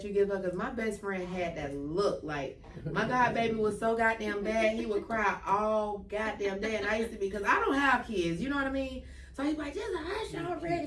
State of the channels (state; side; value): identical; both; correlation 1.00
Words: you give her? Because my best friend had that look. Like, my god baby was so goddamn bad, he would cry all goddamn day. And I used to be, because I don't have kids, you know what I mean? So he's like, just hush